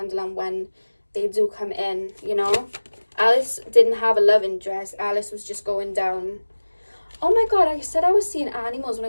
when they do come in, you know. Alice didn't have a love interest. Alice was just going down. Oh my God, I said I was seeing animals. When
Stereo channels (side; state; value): both; inverted; correlation -1.00